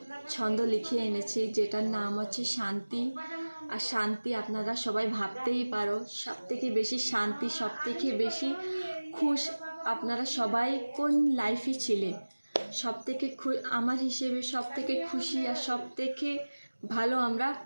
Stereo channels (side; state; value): both; inverted; correlation -1.00